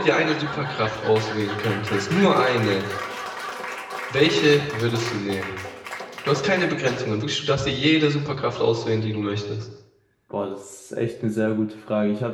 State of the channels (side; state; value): both; identical; correlation 1.00